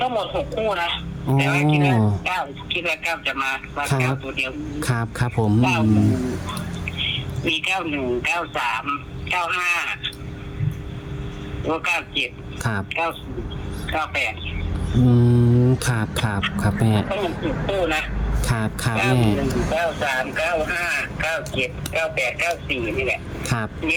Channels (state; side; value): identical; both; correlation 1.00